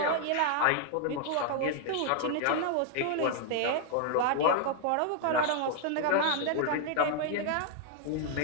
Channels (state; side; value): different; both; correlation 0.00